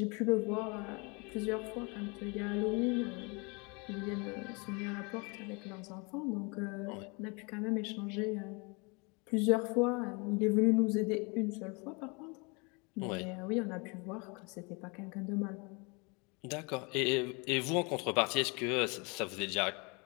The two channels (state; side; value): quieter; right; 30.5 dB